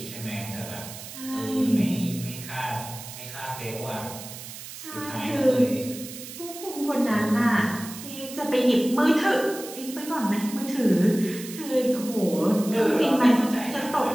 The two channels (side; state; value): right; noise; hiss, 12 dB below the sound